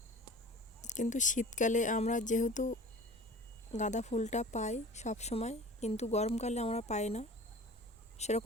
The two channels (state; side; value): normal; both; correlation 0.41